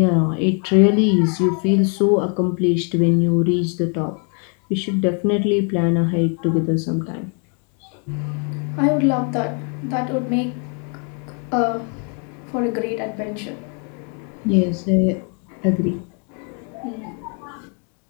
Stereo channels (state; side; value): quieter; right; 39.5 dB